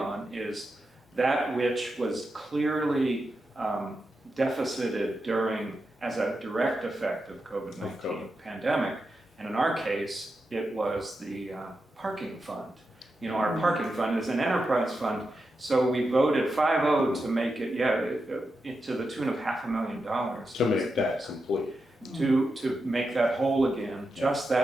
is that which was clearly deficited during, as a direct effect of COVID-19 pandemic. And in our case, it was the parking fund. You know, our parking fund is an enterprise fund, so we voted 5-0 to make it, to the tune of $500,000. To make that complete. To make that whole again, just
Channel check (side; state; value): both; normal; correlation 0.88